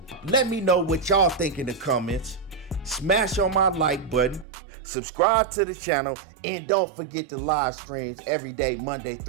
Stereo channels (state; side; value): drops out; left; at 4.5 s